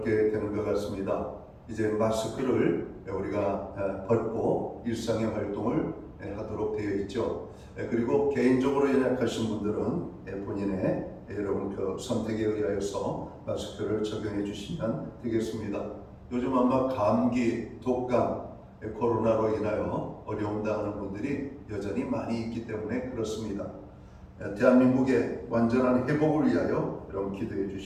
되는 것 같습니다. 이제 마스크를 우리가 벗고 일상의 활동을 하도록 되어 있죠. 그리고 개인적으로 연약하신 분들은 본인의 여러분 그 선택에 의하여서 마스크를 적용해 주시면 되겠습니다. 요즘 아마 감기, 독감, 코로나로 인하여 어려움 당하는 분들이 여전히 많이 있기 때문에 그렇습니다. 대한민국의 완전한 회복을 위하여 여러분 기도해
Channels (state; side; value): identical; both; correlation 1.00